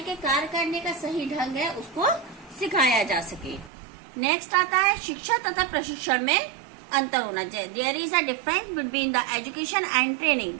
के कार्य करने का सही ढंग है उसको सिखाया जा सके। नेक्स्ट आता है शिक्षा तथा प्रशिक्षण में अंतर होना चाहिए। There is a difference between the education and training,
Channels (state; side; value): drops out; left; at 3.7 s